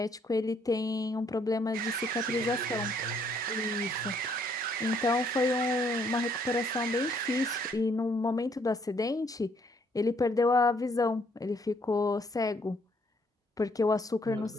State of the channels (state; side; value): normal; both; correlation 0.68